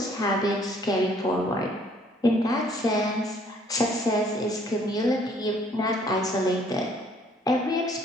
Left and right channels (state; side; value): normal; both; correlation 0.61